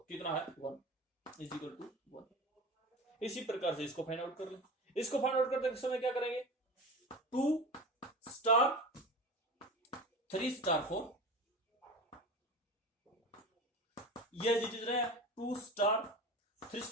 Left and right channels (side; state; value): both; normal; correlation 0.31